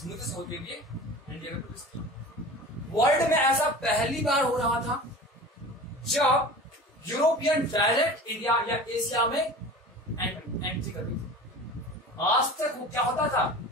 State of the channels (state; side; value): normal; both; correlation 0.37